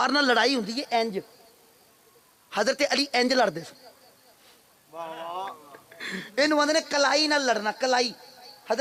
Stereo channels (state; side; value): identical; both; correlation 1.00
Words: ਨਾਲ ਲੜਾਈ ਹੁੰਦੀ ਹੈ ਇੰਜ, ਹਜ਼ਰਤ ਅਲੀ ਇੰਜ ਲੜਦੇ ਸੀ। ਵਾਹ ਵਾਹ, ਇਹਨੂੰ ਆਂਦੇ ਨੇ ਕਲਾਈ ਨਾਲ ਲੜਨਾ, ਕਲਾਈ।